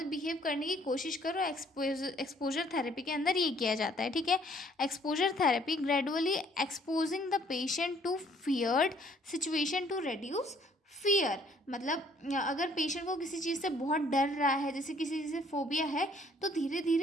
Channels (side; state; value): both; normal; correlation 0.61